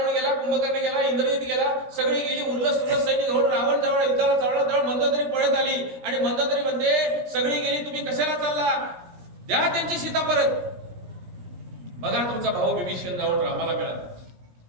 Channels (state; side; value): late; left; 17 ms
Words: गेला, कुंभकर्ण गेला, इंद्रजित गेला. सगळी गेली. उल्लस सैनिक घेऊन रावण जवळ युद्धाला जवळ मंदोदरी पळत आली. आणि मंदोदरी मध्ये सगळी गेली, तुम्ही कशाला चालला? द्या त्यांची सीता परत. बघा तुमचा भाऊ विभीषण जाऊन रामाला मिळाला,